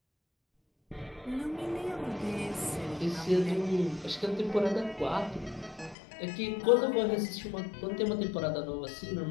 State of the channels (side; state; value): right; drops out; at 6.0 s